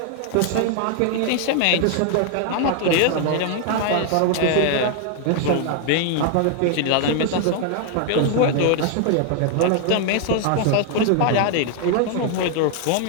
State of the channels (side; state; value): both; different; correlation 0.00